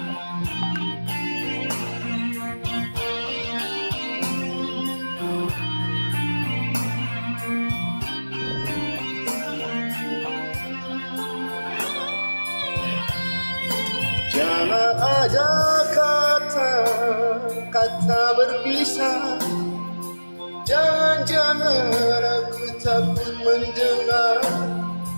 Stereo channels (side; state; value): both; inverted; correlation -1.00